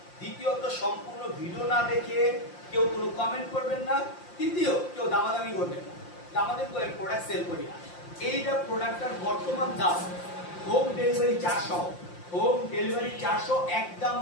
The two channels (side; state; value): right; late; 5.7 ms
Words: দ্বিতীয়ত সম্পূর্ণ ভিডিও না দেখে কেউ কোনো কমেন্ট করবেন না। তৃতীয়, কেউ দামাদামি করবেন না। দামাদামি করে প্রোডাক্ট সেল করি না। এইটা প্রোডাক্টটার বর্তমান দাম হোম ডেলিভারি 400, হোম ডেলিভারি 400, একদম